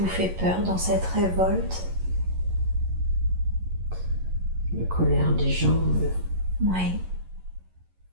fait peur dans cette révolte? La colère des gens. Oui.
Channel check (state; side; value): late; left; 11 ms